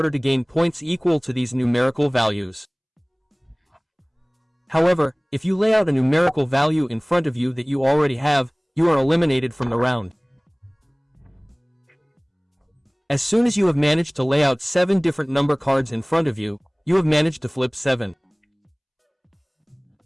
to gain points equal to these numerical values. However, if you lay out a numerical value in front of you that you already have, you are eliminated from the round. As soon as you have managed to lay out 7 different number cards in front of you, you have managed to flip 7.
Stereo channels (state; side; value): identical; both; correlation 1.00